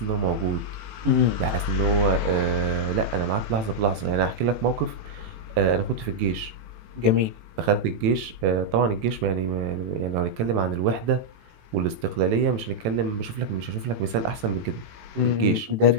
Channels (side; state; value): left; late; 18 ms